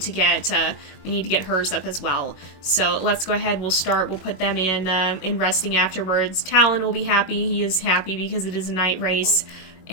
get hers up as well. So let's go ahead. We'll put them in resting afterwards. Talon will be happy. He is happy because it is a night race,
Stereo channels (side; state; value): right; late; 22 ms